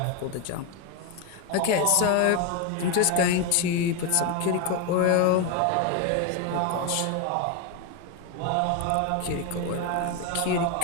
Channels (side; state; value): both; different; correlation 0.02